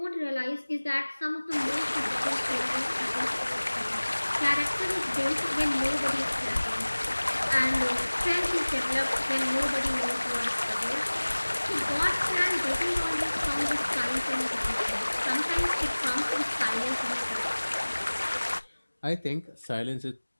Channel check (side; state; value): both; inverted; correlation -1.00